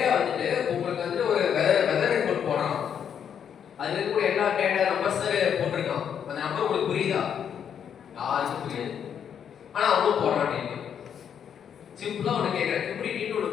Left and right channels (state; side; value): quieter; right; 8.3 dB